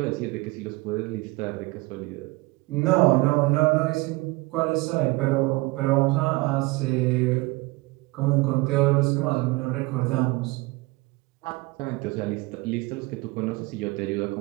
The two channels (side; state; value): left; quieter; 23.0 dB